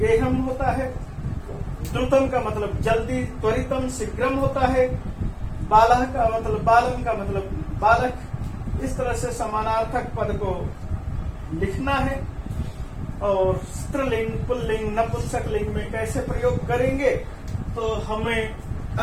होता है, द्रुतम का मतलब जल्दी त्वरितम शीघ्रम होता है, बालह का मतलब बालम का मतलब बालक। इस तरह से समानार्थक पद को लिखना है। और स्त्रीलिंग, पुल्लिंग, नपुंसकलिंग में कैसे प्रयोग करेंगे, तो हमें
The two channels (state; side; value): identical; both; correlation 1.00